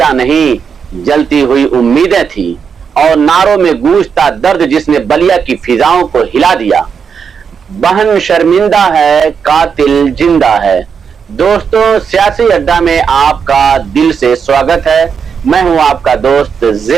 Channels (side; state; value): left; quieter; 6.5 dB